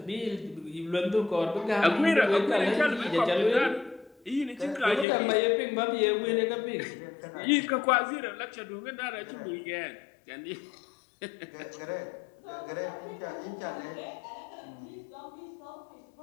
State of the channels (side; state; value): right; drops out; at 5.1 s